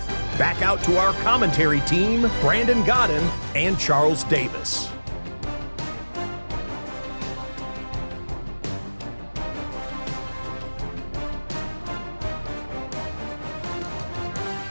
Back out to our commentary team, Brandon Godden and Charles Davis.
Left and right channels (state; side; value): inverted; both; correlation -1.00